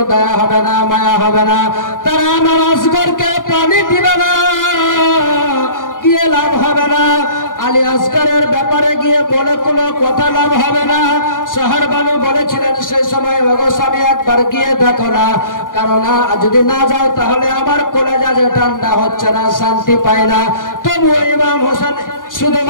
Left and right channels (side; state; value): right; late; 0.89 ms